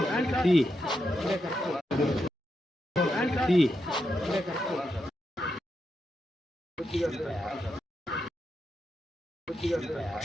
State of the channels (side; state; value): both; normal; correlation 0.85